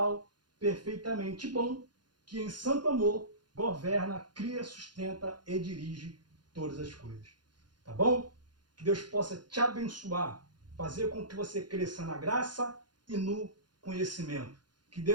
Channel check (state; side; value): late; left; 0.70 ms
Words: perfeitamente bom, que em santo amor governa, cria, sustenta e dirige todas as coisas. Tá bom? Que Deus possa te abençoar, fazer com que você cresça na graça e no conhecimento. Que